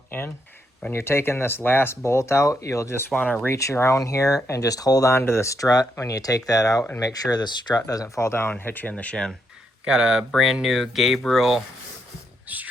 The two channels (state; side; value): normal; both; correlation 0.78